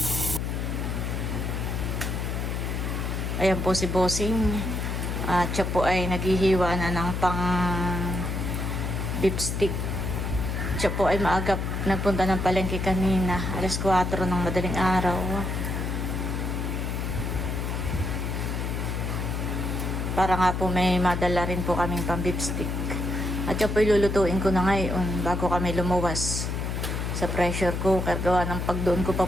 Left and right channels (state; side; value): noise; left; hum, 2 dB below the sound